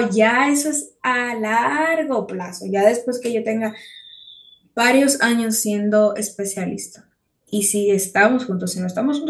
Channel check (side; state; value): both; identical; correlation 1.00